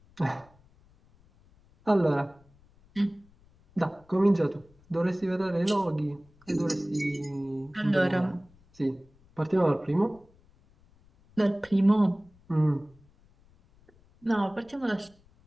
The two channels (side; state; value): left; noise; rumble, 30 dB below the sound